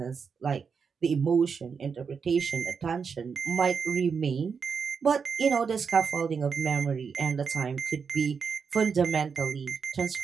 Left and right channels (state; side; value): quieter; left; 5.9 dB